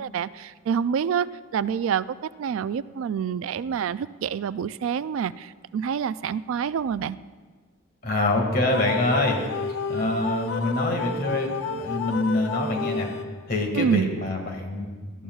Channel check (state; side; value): normal; both; correlation 0.21